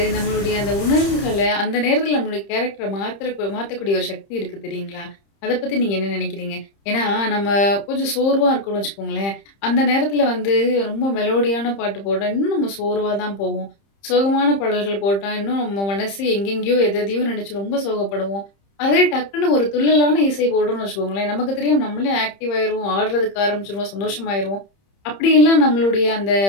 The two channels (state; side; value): late; right; 30 ms